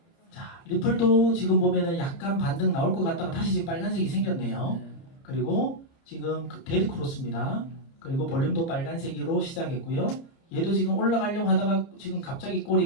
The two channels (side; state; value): right; late; 30 ms